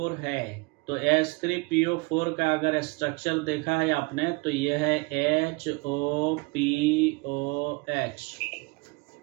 है तो H3PO4 का अगर स्ट्रक्चर देखा है आपने तो ये है HOPOH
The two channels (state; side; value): quieter; left; 27.2 dB